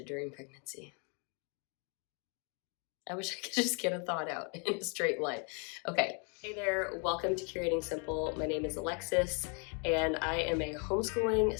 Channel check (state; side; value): quieter; right; 37.9 dB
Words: during pregnancy. I wish I could just get a thought out in a straight line. Okay, hey there, welcome to Curating Simple. My name is Alexis, and I am a homeschooling